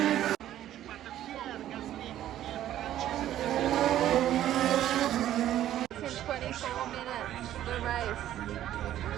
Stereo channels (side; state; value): left; quieter; 12.4 dB